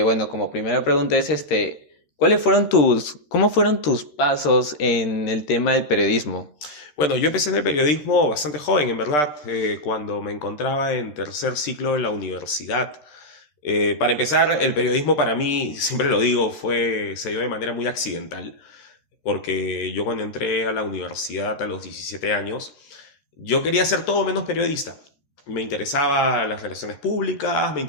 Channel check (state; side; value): late; right; 13 ms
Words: como primera pregunta es cómo fueron tus pasos en el tema del periodismo? Bueno, yo empecé en el periodismo bastante joven, en verdad, cuando me encontraba en tercer ciclo de la universidad. Para empezar, el periodismo para mí, siempre lo digo, se dio de manera muy accidental, porque yo cuando entré a la universidad a los 17 años, yo quería ser todo menos periodista. Me interesaba las relaciones públicas, me